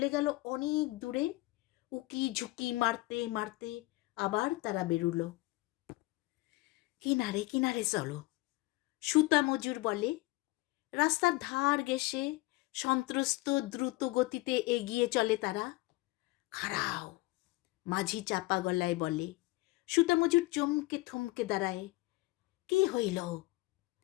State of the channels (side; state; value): right; quieter; 21.3 dB